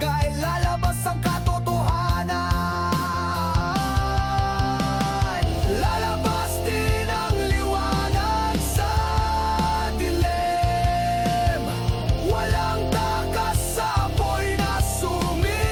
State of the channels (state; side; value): identical; both; correlation 1.00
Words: lalabas ang katotohanan. Lalabas din ang liwanag sa dilim, walang takas sa apoy na sumisende.